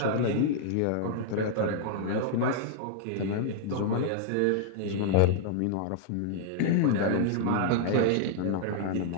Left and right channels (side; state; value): both; different; correlation -0.01